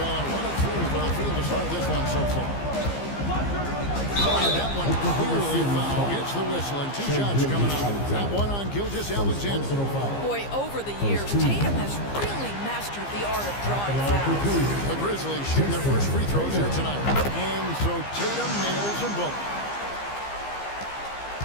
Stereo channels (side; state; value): right; late; 15 ms